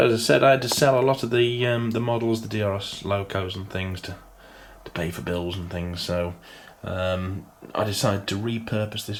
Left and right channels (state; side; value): identical; both; correlation 1.00